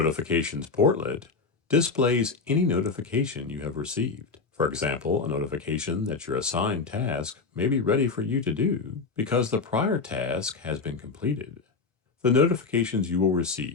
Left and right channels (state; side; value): quieter; right; 4.5 dB